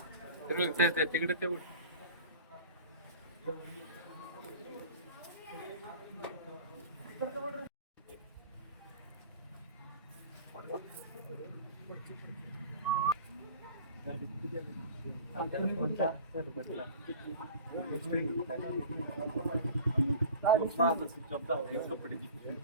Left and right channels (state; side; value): inverted; both; correlation -0.39